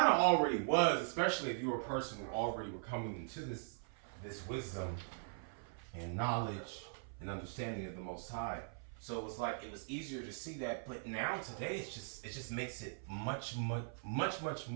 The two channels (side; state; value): left; silent; 51 dB below the other